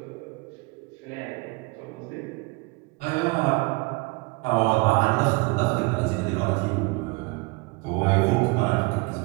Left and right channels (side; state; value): left; quieter; 27.3 dB